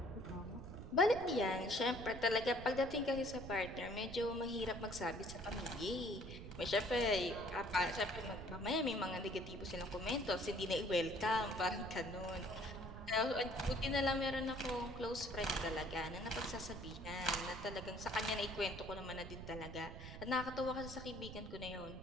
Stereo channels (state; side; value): noise; right; rumble, 11 dB below the sound